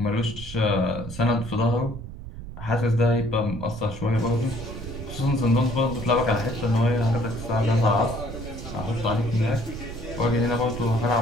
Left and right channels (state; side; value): noise; right; rumble, 11 dB below the sound